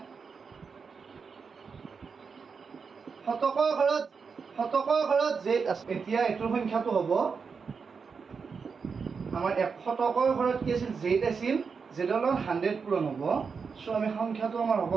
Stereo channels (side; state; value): left; quieter; 5.5 dB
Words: শতকৰ ঘৰত z আছে। এতিয়া এইটোৰ সংখ্যাটো হ'ব আমাৰ শতকৰ ঘৰত কি আছিল, z আছিল, zৰ লগত 100 পূৰণ হ'ব। চ' আমি সংখ্যাটো আমাৰ হ'ব